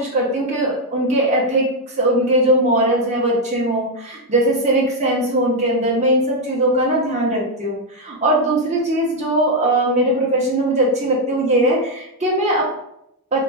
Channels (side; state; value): both; normal; correlation 0.02